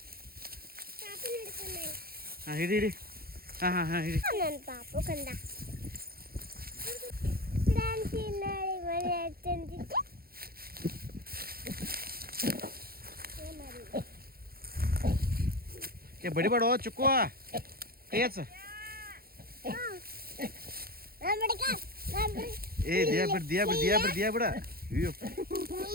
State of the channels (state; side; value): late; left; 0.44 ms